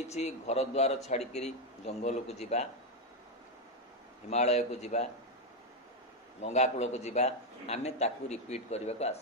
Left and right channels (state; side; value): normal; both; correlation 0.05